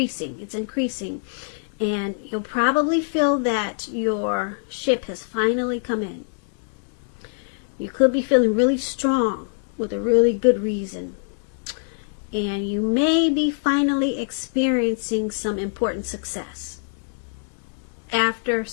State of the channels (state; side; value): silent; right; digital silence